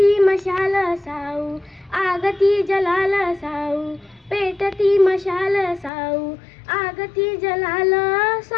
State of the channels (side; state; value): right; drops out; at 5.9 s